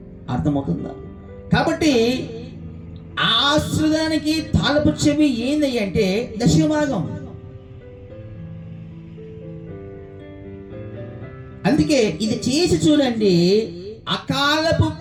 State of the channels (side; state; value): both; identical; correlation 1.00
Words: అర్థమవుతుందా? కాబట్టి ఆశ్రదానికి తాళపు చెవి ఏంది అంటే దశభాగం. అందుకే అందుకే ఇది చేసి చూడండి, అకాలపు